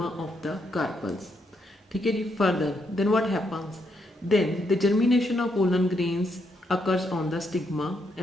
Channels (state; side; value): normal; both; correlation 0.77